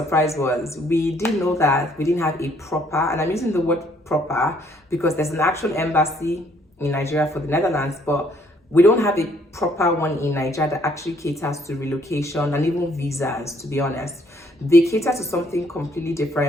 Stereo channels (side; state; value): both; normal; correlation 0.66